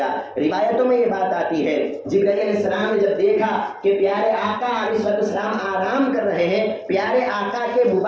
روایتوں میں یہ بات آتی ہے جبرائیل علیہ السلام نے جب دیکھا کہ پیارے آقا علیہ السلام آرام کر رہے ہیں، پیارے آقا کے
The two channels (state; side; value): identical; both; correlation 1.00